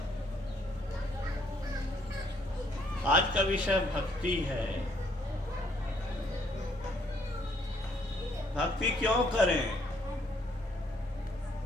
आज का विषय भक्ति है। भक्ति क्यों करें?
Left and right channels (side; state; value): both; normal; correlation 0.67